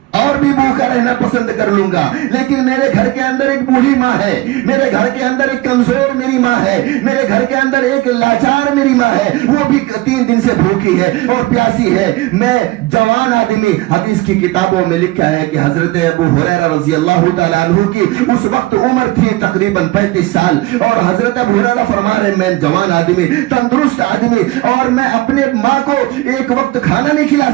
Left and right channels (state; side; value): quieter; left; 18.5 dB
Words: اور بھی بھوکا رہنا پسند کر لوں گا، لیکن میرے گھر کے اندر ایک بوڑھی ماں ہے، میرے گھر کے اندر ایک کمزور میری ماں ہے، میرے گھر کے اندر ایک لاچار میری ماں ہے، وہ بھی 3 دن سے بھوکی ہے اور پیاسی ہے. میں جوان آدمی، حدیث کی کتابوں میں لکھا ہے کہ حضرت ابو ہریرہ رضی اللہ تعالیٰ عنہ کی اس وقت عمر تھی تقریباً 35 سال، اور حضرت ابو ہریرہ فرما رہے میں جوان آدمی، تندرست آدمی، اور میں اپنے ماں کو ایک وقت کھانا نہیں کھلا